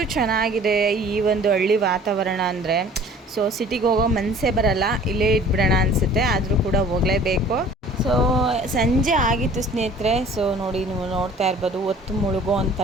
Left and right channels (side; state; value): both; normal; correlation 0.49